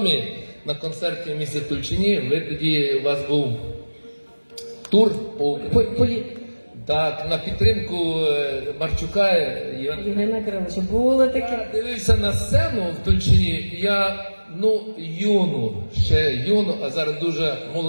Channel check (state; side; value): inverted; both; correlation -1.00